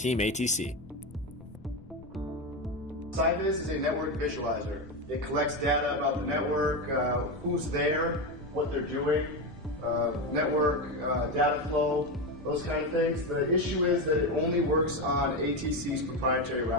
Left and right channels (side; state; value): left; noise; rumble, 20 dB below the sound